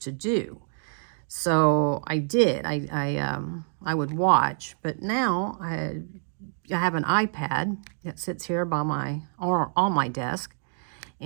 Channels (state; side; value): silent; left; digital silence